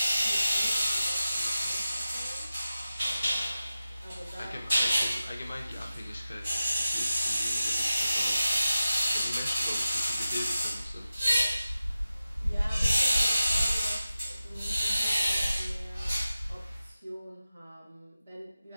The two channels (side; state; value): both; inverted; correlation -0.93